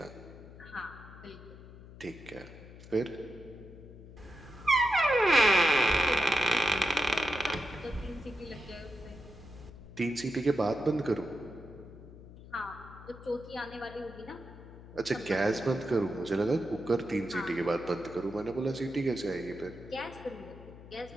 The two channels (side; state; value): left; noise; hum, 17 dB below the sound